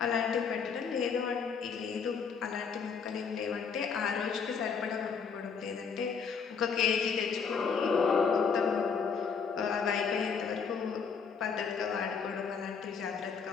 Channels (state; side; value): quieter; right; 5.9 dB